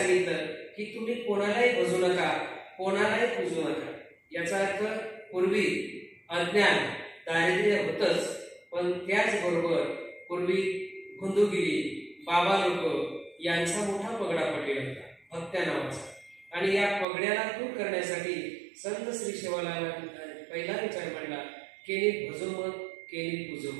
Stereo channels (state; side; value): drops out; left; at 17.1 s